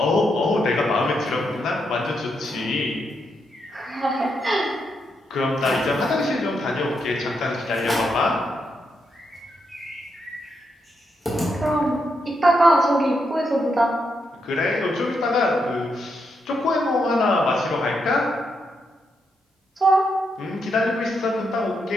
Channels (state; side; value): normal; both; correlation 0.81